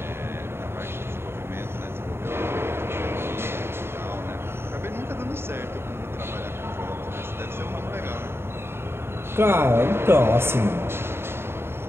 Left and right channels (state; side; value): late; left; 0.12 ms